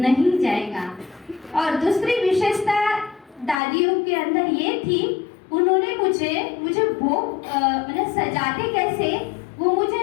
जाएगा। और दूसरी विशेषता दादियों के अंदर ये थी, उन्होंने मुझे भोग मतलब सजाते कैसे वो मुझे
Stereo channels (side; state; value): right; drops out; at 3.6 s